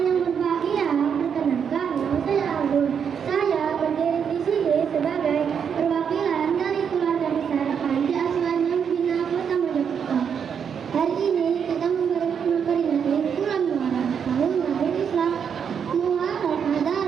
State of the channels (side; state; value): left; quieter; 7.3 dB